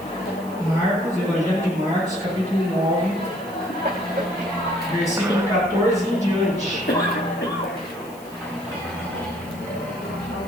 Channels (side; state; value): left; noise; hiss, 22 dB below the sound